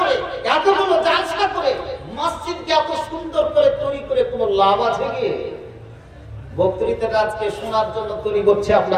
এতগুলো জালসা করে, মসজিদকে এত সুন্দর করে তৈরি করে কোনো লাভ আছে কি? বক্তৃতাটা আজকে শোনার জন্য তৈরি করছে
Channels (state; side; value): identical; both; correlation 1.00